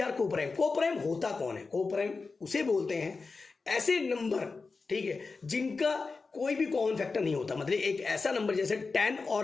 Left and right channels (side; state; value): right; quieter; 4.3 dB